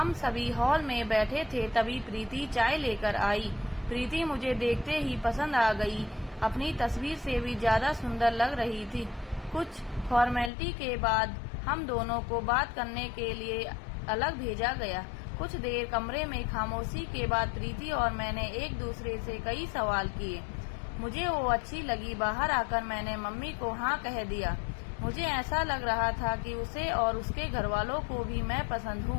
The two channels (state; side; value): drops out; right; at 10.5 s